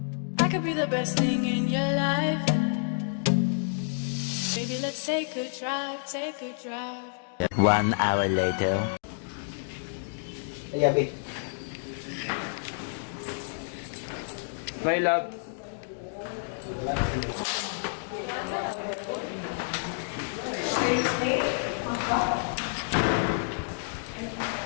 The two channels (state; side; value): silent; right; digital silence